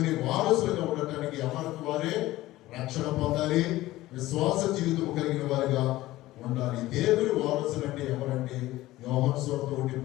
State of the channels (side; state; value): right; quieter; 16.9 dB